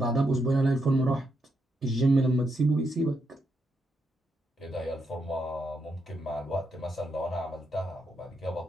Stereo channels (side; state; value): both; normal; correlation 0.81